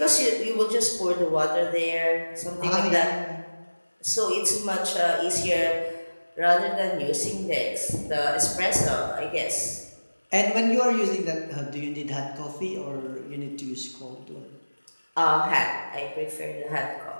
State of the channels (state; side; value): inverted; both; correlation -1.00